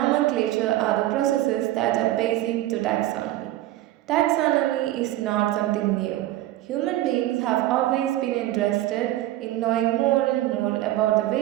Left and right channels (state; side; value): quieter; left; 15.2 dB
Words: are the processes that are basic to taxonomy. Taxonomy is not something new. Human beings have always been interested in knowing more and more about the